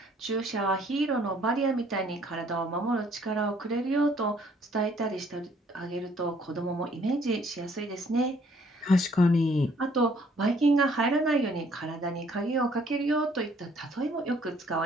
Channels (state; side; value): normal; both; correlation 0.62